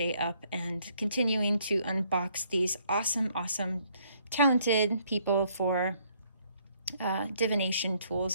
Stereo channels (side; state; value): both; inverted; correlation -0.67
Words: up and continuing to unbox these awesome, talented people for divination